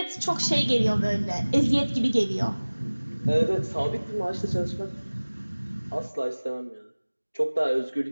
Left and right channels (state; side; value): inverted; both; correlation -1.00